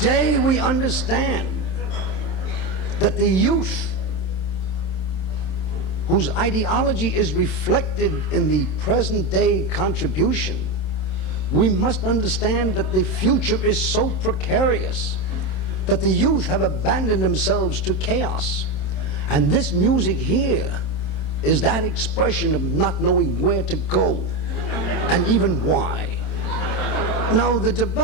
we understand that the youth, whose ideology is reflected in the present day contribution, we must understand that the future is so precarious that the youth have abandoned themselves to chaos. And this music here is that expression of not knowing where to go and even why. Now, the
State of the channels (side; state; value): right; late; 27 ms